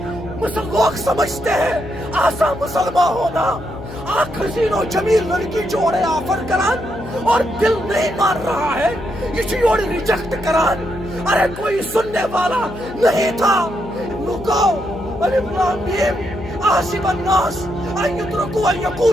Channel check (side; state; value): left; noise; hum, 12 dB below the sound